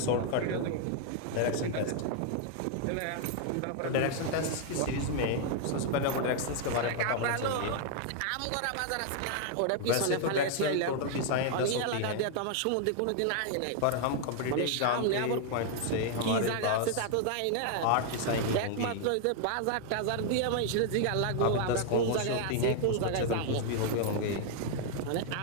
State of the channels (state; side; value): different; both; correlation 0.00